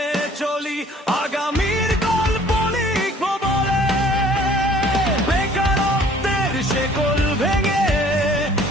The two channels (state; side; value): normal; both; correlation 0.55